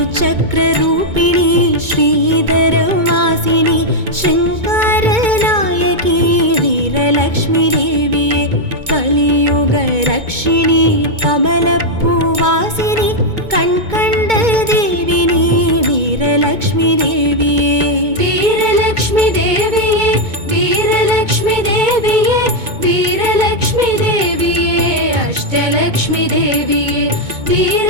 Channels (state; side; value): late; left; 2.2 ms